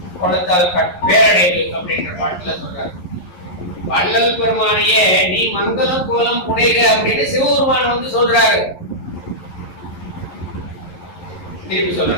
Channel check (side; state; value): right; late; 11 ms